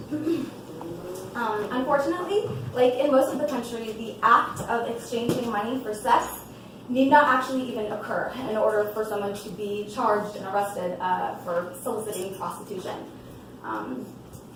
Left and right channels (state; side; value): identical; both; correlation 1.00